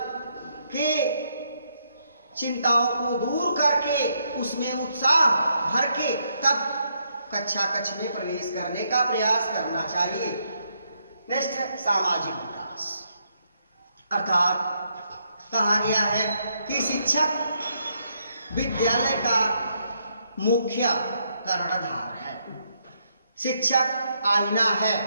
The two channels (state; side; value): inverted; both; correlation -0.76